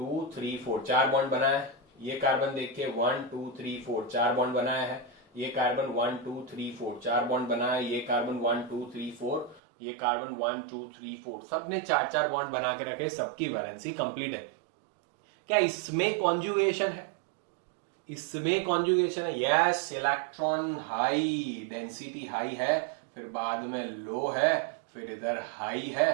3 4 4 बॉन्ड बनाए। ये कार्बन देखिए 1 2 3 4 4 बॉन्ड बनाया है। ये कार्बन 1 2 3 4 4 बॉन्ड बनाया। ये कार्बन 1 2 3 4, ये कार्बन 1 2 3 4, सबने 4 बॉन्ड बना के रखे, सबकी वैलेंसी कंप्लीट है। क्या इसमें कॉन्जुगेशन है, इसमें कॉन्जुगेशन है, yes. Electron high, density high है, फिर बाद में लो है, फिर इधर हाई है,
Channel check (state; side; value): drops out; left; at 9.6 s